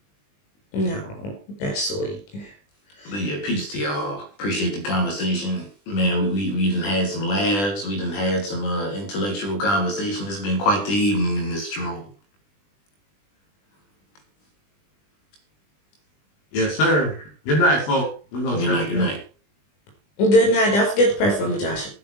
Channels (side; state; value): right; late; 20 ms